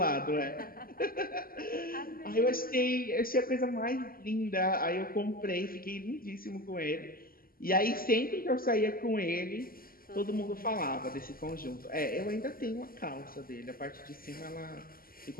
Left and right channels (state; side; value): late; right; 0.42 ms